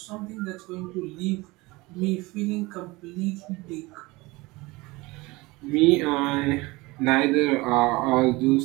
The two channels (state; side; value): quieter; left; 22.6 dB